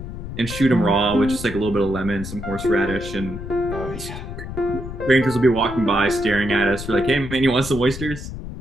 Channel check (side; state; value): left; noise; rumble, 9 dB below the sound